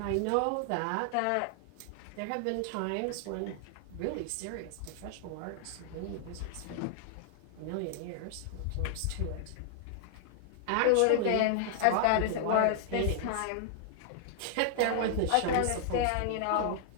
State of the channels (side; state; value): both; different; correlation -0.01